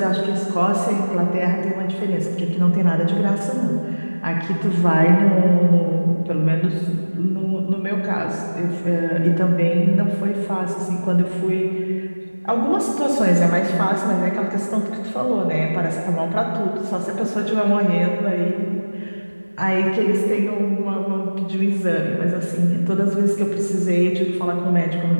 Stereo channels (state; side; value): inverted; both; correlation -1.00